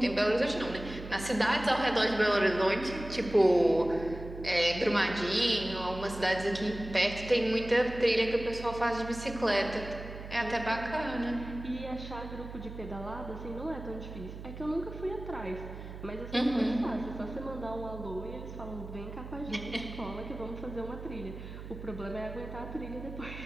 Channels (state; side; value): noise; right; hum, 11 dB below the sound